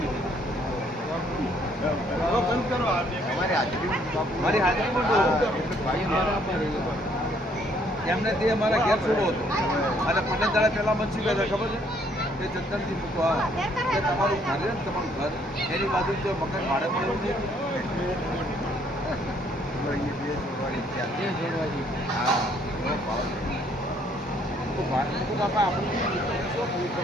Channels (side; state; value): both; normal; correlation 0.65